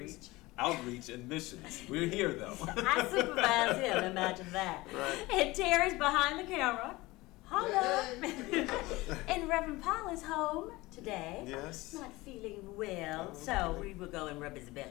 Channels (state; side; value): quieter; right; 20.6 dB